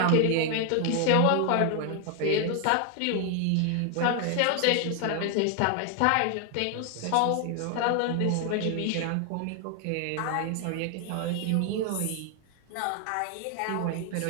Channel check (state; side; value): different; both; correlation 0.00